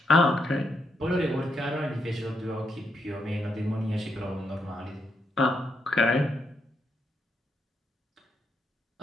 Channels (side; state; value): both; normal; correlation 0.79